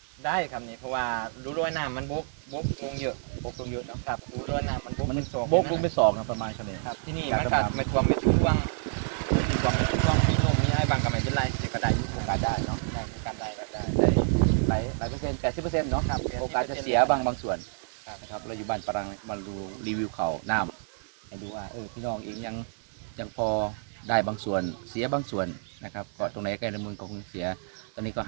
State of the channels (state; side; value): silent; left; digital silence